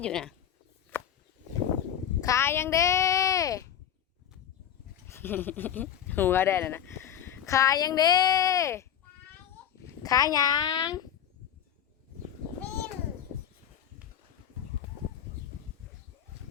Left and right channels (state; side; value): quieter; right; 9.5 dB